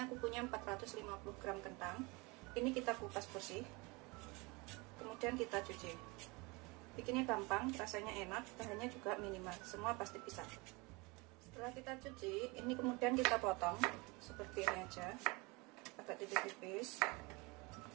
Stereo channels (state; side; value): quieter; left; 26.4 dB